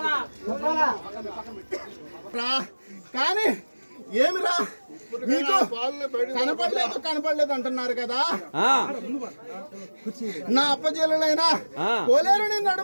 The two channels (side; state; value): both; inverted; correlation -1.00